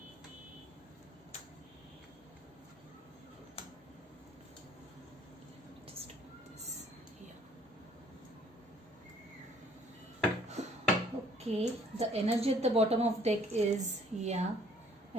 Just put this here. Okay, the energy at the bottom of deck is,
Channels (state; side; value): normal; both; correlation 0.59